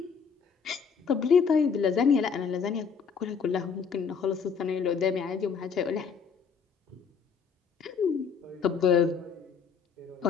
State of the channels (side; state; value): right; quieter; 6.1 dB